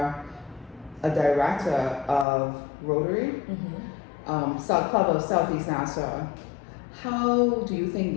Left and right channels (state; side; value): drops out; right; at 2.2 s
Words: a director of Rotary, Club of Southeast Nassau. How do you think